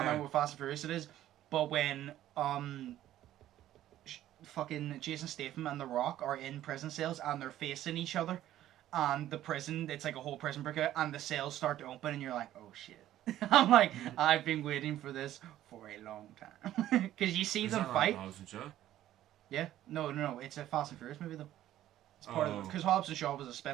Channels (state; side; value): quieter; left; 13.1 dB